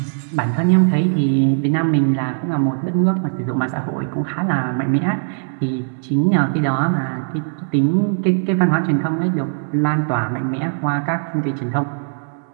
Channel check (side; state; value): left; silent; digital silence